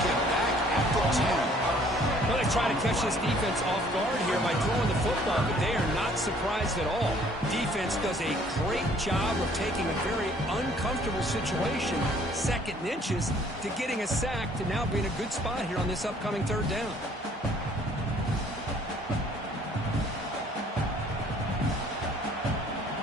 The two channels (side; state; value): both; normal; correlation 0.59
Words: him back at the 10. Well, they try to catch this defense off guard here by throwing the football, but they are not surprised at all. Defense does a great job of taking a very uncomfortable situation, second and inches, to getting a sack to now being a good spot here on this upcoming third down.